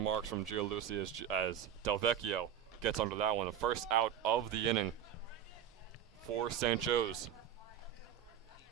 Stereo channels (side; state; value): left; quieter; 9.5 dB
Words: from Gialucci as Delvecchio gets under that one. The first out of the inning for St. Joe's.